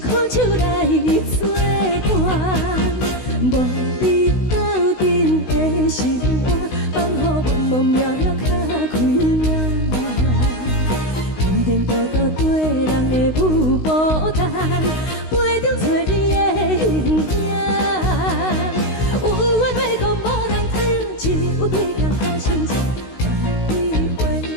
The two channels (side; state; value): right; late; 16 ms